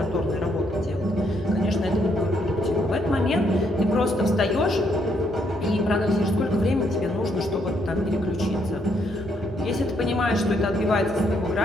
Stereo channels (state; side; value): normal; both; correlation 0.73